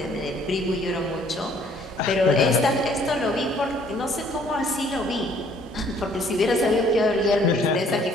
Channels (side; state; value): both; normal; correlation 0.60